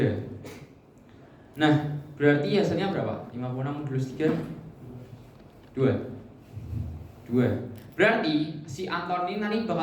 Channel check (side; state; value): both; identical; correlation 1.00